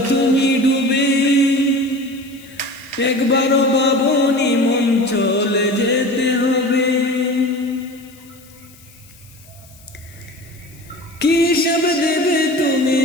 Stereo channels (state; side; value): noise; left; hiss, 25 dB below the sound